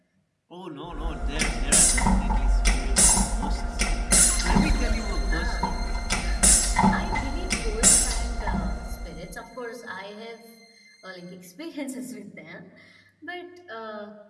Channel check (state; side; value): identical; both; correlation 1.00